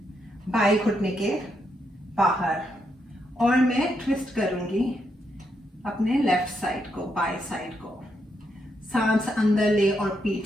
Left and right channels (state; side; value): normal; both; correlation 0.79